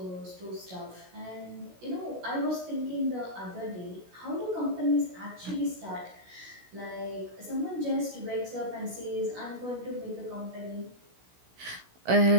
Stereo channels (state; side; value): late; left; 16 ms